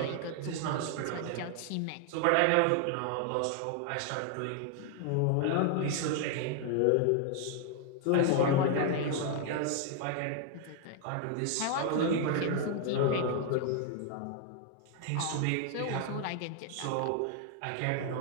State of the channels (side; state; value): both; different; correlation 0.00